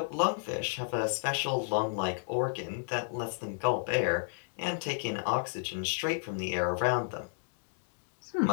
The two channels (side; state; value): right; silent; 57 dB below the other